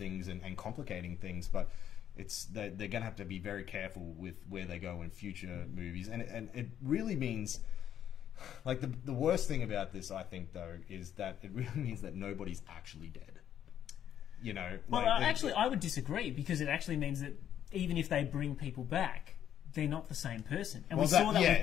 and complicating things, but. They're going to have to be very careful with where they go in future movies, and it really means, like the worst thing about this, I think, though, is that it really means that nobody's actually dead. You know, well, actually, I would disagree, because it actually means that even if they bring people back, they're not the same person, and we saw that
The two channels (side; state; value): right; quieter; 10.2 dB